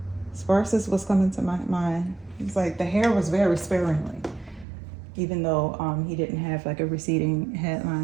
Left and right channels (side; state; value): left; drops out; at 4.7 s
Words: Sparse is what's coming to my mind. It's like the hair was very sparingly, even though he didn't have like a receding